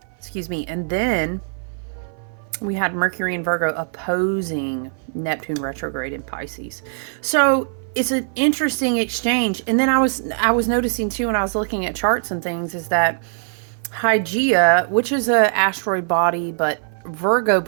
Excuse me. And then we had Mercury in Virgo opposing Neptune retrograde in Pisces. So it's an interesting exchange. And then I was noticing too, when I was looking at charts and things, is that Hygeia, which is an asteroid body, but Virgo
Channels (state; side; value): silent; left; 57 dB below the other